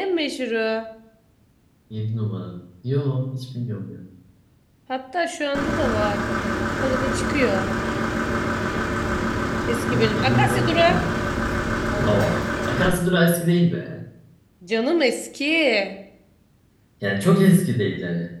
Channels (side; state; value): both; identical; correlation 1.00